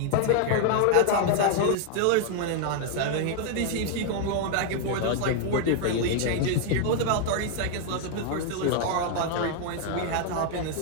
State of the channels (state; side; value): different; both; correlation 0.00